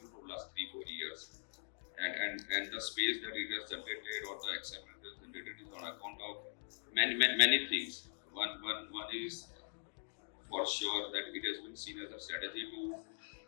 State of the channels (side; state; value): right; silent; digital silence